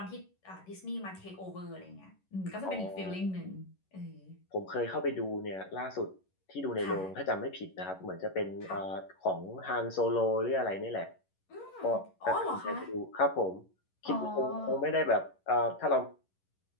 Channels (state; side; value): late; right; 11 ms